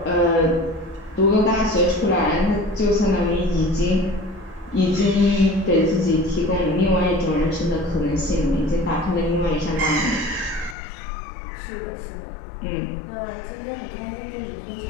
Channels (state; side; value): drops out; right; at 10.8 s